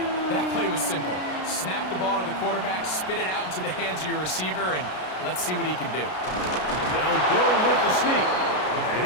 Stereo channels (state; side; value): late; right; 33 ms